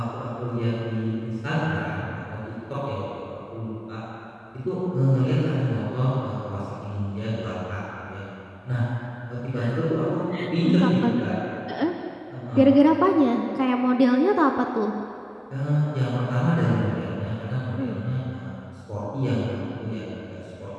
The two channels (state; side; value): identical; both; correlation 1.00